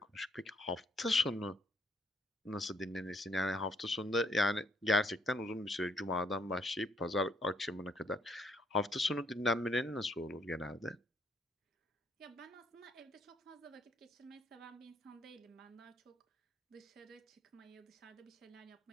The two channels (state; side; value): normal; both; correlation 0.69